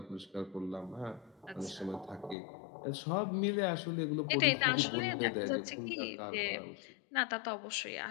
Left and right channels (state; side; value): drops out; right; at 2.4 s